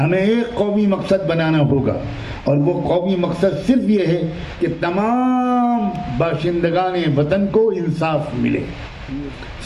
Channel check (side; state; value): both; identical; correlation 1.00